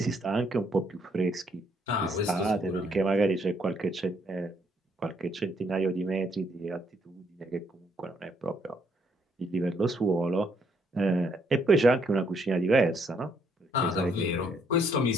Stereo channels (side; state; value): both; normal; correlation 0.70